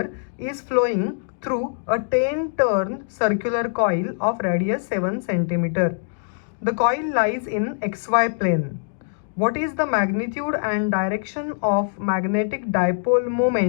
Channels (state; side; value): silent; right; digital silence